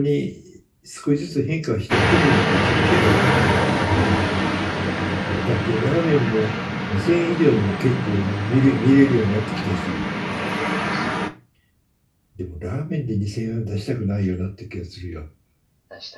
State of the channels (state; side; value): identical; both; correlation 1.00